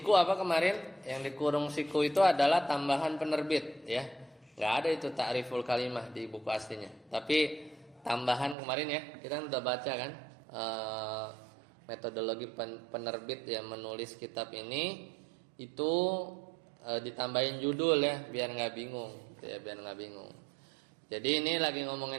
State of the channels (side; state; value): left; drops out; at 8.6 s